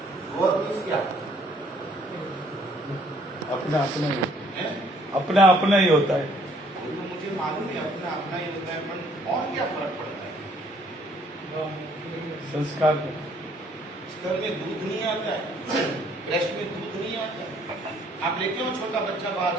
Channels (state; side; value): normal; both; correlation 0.63